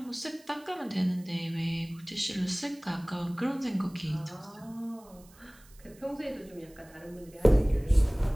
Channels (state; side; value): noise; right; hiss, 26 dB below the sound